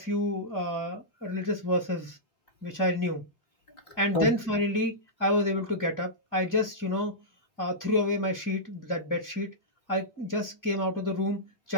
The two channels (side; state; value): right; late; 2.4 ms